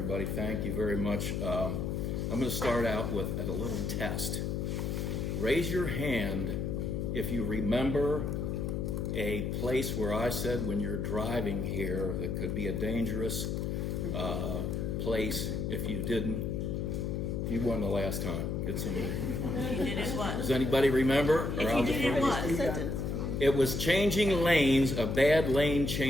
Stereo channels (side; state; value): left; noise; hum, 1 dB below the sound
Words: thank you very much. I'm going to start out with a little test. Raise your hand if you remember a place where I said when you're driving here that could be a dangerous place. If you didn't, you won the last time. Get some. If you did it, what? Does anybody remember? If you did it, what? It was changing lanes, a bad lane